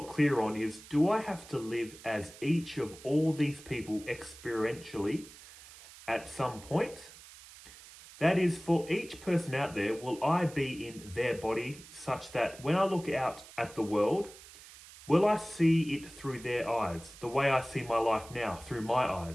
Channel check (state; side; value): noise; right; hiss, 19 dB below the sound